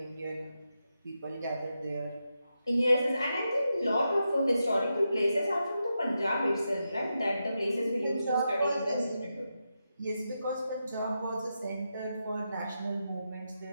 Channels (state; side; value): inverted; both; correlation -0.87